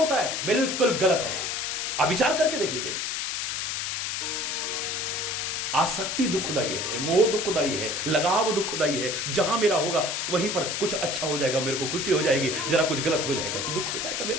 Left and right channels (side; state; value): left; noise; hiss, 2 dB below the sound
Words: है। बिल्कुल गलत है। आप विचार करके देख लीजिए। आसक्ति दुखदाई है, मोह दुखदाई है, लगाव दुखदाई है। जहां मेरा होगा वहीं पर कुछ अच्छा हो जाएगा, मेरे को खुशी हो जाएगी, जरा कुछ गलत हो जाएगा तो दुख हो जाएगा मेरे